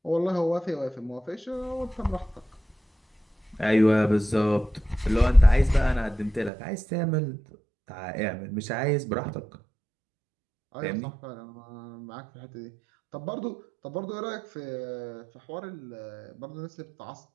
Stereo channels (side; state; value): left; drops out; at 6.5 s